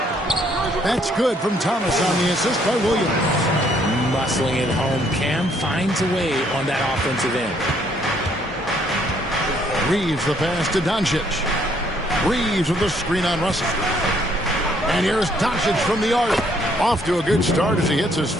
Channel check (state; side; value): normal; both; correlation 0.67